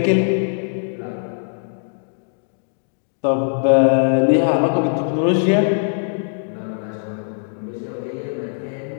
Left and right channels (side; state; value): right; silent; digital silence